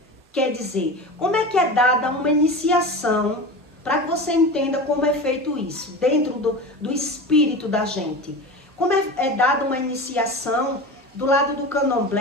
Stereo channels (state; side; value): normal; both; correlation 0.29